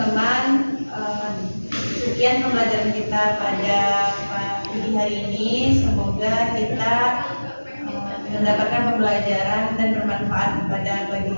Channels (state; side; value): inverted; both; correlation -1.00